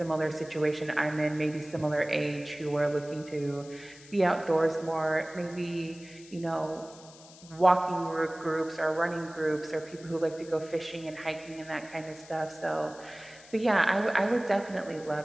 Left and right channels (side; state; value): left; noise; hiss, 21 dB below the sound